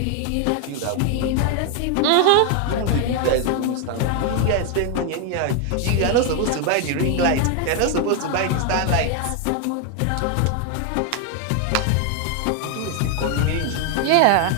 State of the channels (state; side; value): different; both; correlation 0.00